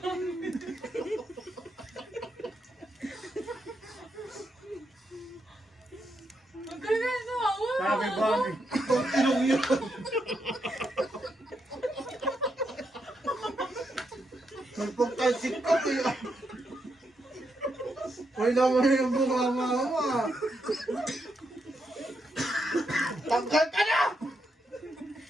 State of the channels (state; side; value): normal; both; correlation 0.82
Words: Ang galing na ako. Sabi ba ni? Itong ilong yun. Nagpagtalsik ka kaya. Wala mo na yung bumama. Tanggal ka na!